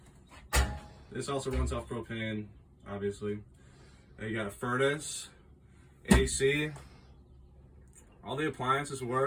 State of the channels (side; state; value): both; identical; correlation 1.00